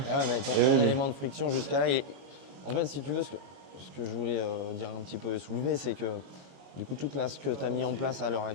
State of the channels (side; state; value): left; late; 22 ms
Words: mais ton élément de friction jusqu'à là, en fait si tu veux ce que je voulais dire un petit peu et soulever, c'est que du coup, ce que tu as mis en place à l'heure